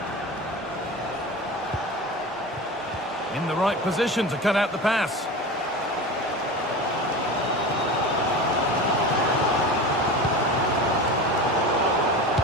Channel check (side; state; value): both; normal; correlation 0.30